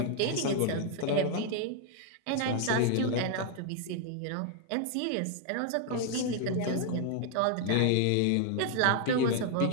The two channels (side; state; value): both; different; correlation 0.00